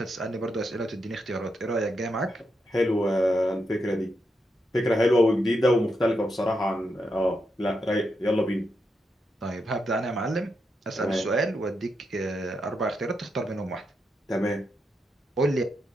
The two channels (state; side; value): normal; both; correlation 0.84